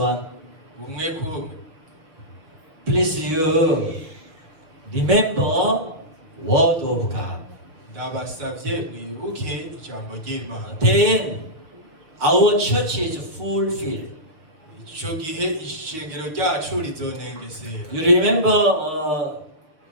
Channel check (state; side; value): late; left; 6.4 ms